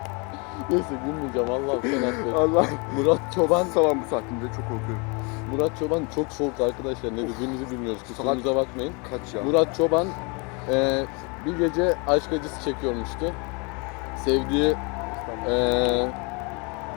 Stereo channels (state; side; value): quieter; right; 31.4 dB